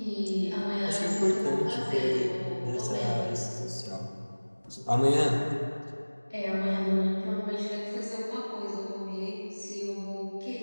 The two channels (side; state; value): both; inverted; correlation -1.00